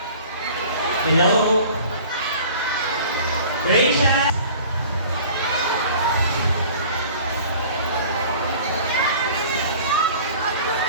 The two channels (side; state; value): both; inverted; correlation -0.46